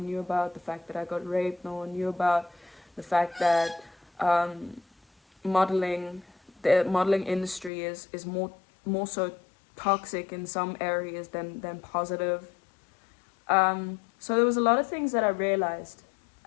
knew about, the fact that I got raped no one knew about, the fact that the modeling industry is more so toxic in some areas than positive. So there was a lot of things that I realized,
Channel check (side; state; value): right; drops out; at 7.7 s